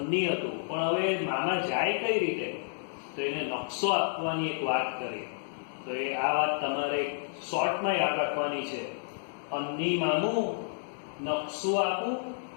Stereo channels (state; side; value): silent; right; digital silence